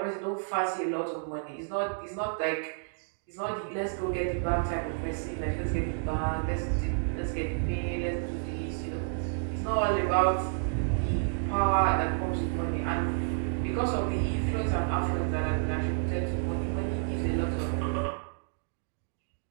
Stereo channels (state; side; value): silent; left; 58 dB below the other